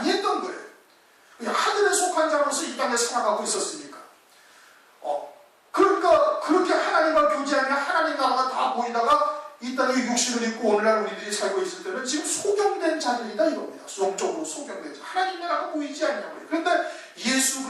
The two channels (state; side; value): identical; both; correlation 1.00